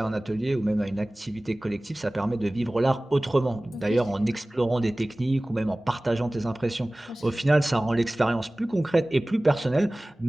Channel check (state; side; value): normal; both; correlation 0.98